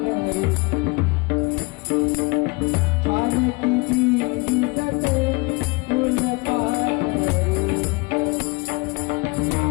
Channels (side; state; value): right; quieter; 27.0 dB